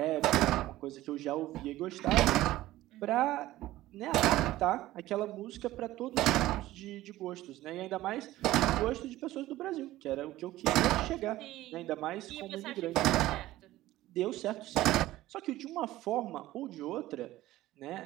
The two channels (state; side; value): quieter; left; 16.0 dB